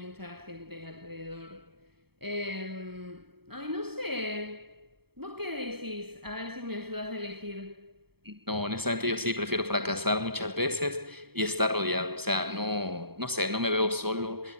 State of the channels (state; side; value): late; left; 0.96 ms